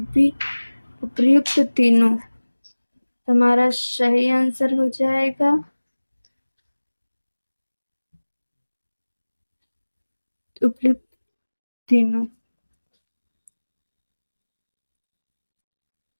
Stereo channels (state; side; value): inverted; both; correlation -1.00